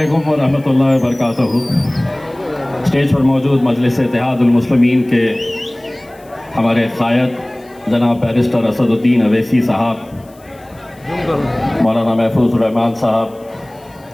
व रहमतुल्लाहि व बरकातहू। स्टेज पर मौजूद मजलिस इत्तेहादुल मुस्लिमीन के हमारे क़ायद जनाब बैरिस्टर असदुद्दीन अवैसी साहब, मौलाना महफूज़ुर रहमान साहब,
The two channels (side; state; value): left; noise; hiss, 29 dB below the sound